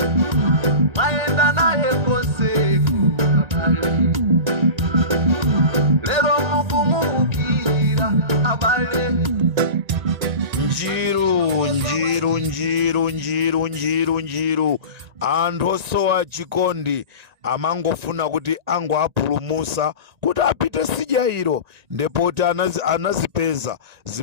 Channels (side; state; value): left; late; 1.9 ms